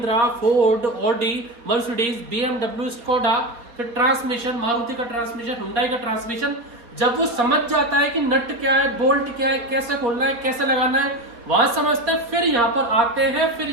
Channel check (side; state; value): left; late; 4.2 ms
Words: Ford, Audi, Mercedes, BMW, Skoda, फिर ट्रांसमिशन, मारुति का ट्रांसमिशन, हुंडई का ट्रांसमिशन। जब वो समझ जाता है कि नट क्या है, बोल्ट क्या है, कैसे खोलना है, कैसे लगाना है, वहां समझते हैं, फिर यहाँ पर आते हैं। फिर